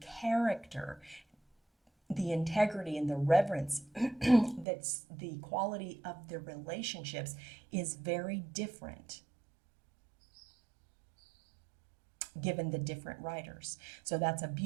character, the integrity and the reverence, that's the quality of the relationships is very different given the different writers. So that's a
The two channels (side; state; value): left; drops out; at 4.7 s